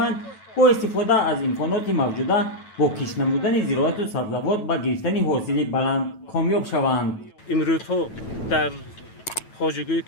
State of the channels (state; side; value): late; right; 9.1 ms